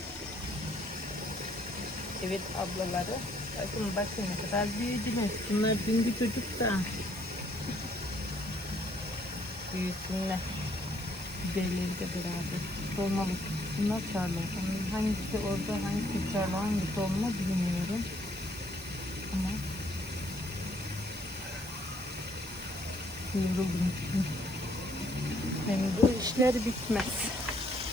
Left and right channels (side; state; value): both; normal; correlation 0.66